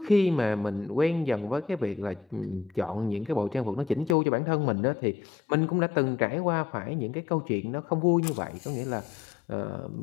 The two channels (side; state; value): right; drops out; at 4.2 s